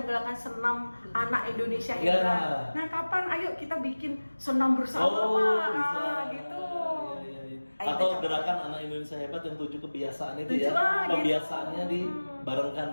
menggalakkan senam anak Indonesia Ya. hebat. Nah kapan ayo kita bikin senam bersama Pak? bisa. Nah, gitu. Iya, iya. Ayo, Atau kita gerakan anak Indonesia hebat yang 7 kebiasaan itu 7, ya. gitu. Pembiasaannya dibarengkan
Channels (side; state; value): both; inverted; correlation -1.00